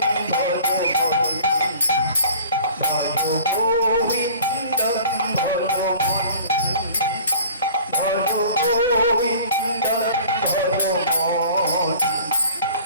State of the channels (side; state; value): both; inverted; correlation -0.47